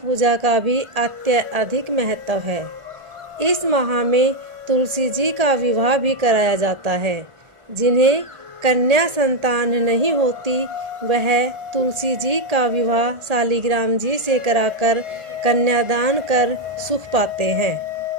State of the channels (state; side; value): late; left; 1.5 ms